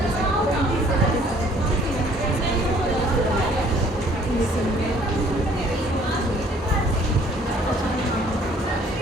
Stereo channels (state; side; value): normal; both; correlation 0.58